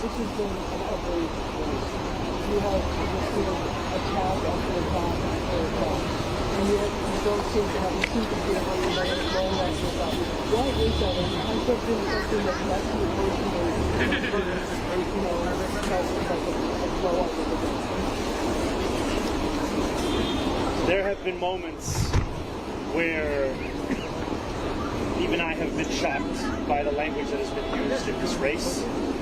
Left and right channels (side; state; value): both; identical; correlation 1.00